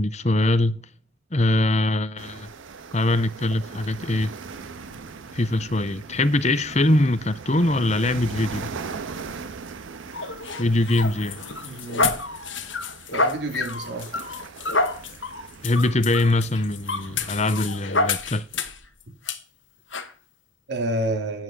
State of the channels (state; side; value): normal; both; correlation 0.55